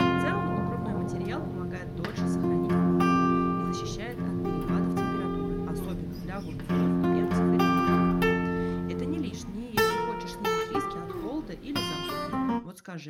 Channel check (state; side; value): identical; both; correlation 1.00